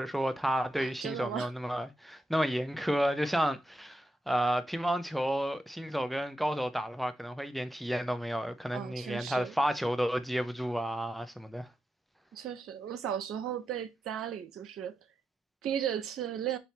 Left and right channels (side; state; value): both; normal; correlation 0.87